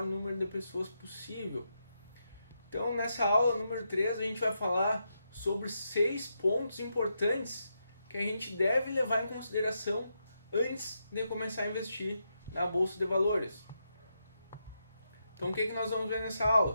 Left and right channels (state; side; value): inverted; both; correlation -0.83